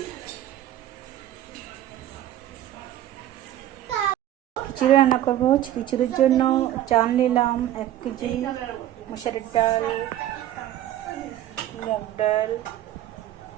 খিচুড়ি রান্না করবো। খিচুড়ির জন্য চাল নিলাম 1 কেজি, মসুরের ডাল, মুগ ডাল,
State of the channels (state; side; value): quieter; left; 12.8 dB